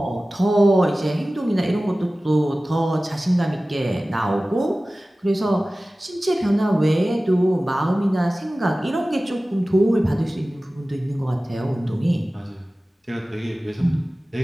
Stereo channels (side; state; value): both; normal; correlation 0.97